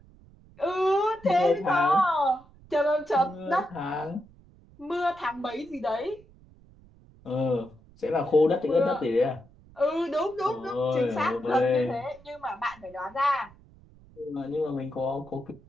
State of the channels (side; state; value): right; noise; rumble, 25 dB below the sound